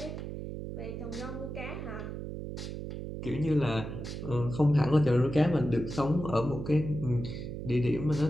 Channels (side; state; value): right; noise; hum, 7 dB below the sound